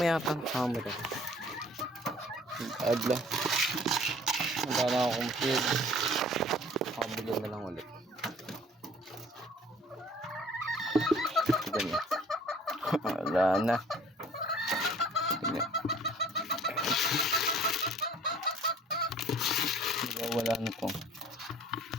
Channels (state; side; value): normal; both; correlation 0.53